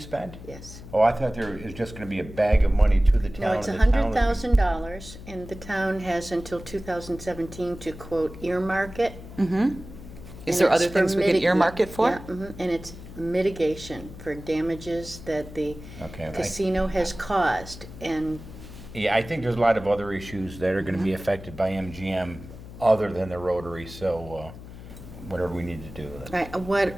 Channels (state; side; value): noise; left; hum, 14 dB below the sound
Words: Yes. Oh, I thought there is just going to be a bag of money to the town. No, it's and the town would be- $100,000, and the town has until 2017 to quote earmark it. Mm-hmm. And there it's other for things we could mitigation. earmark it for? Yeah, and it's mitigation for damages that the Okay, casino has caused, and Yeah, I think there's a lot of other issues that are going to be affected by MGM other than the Rotary, so whatever we need to do. right,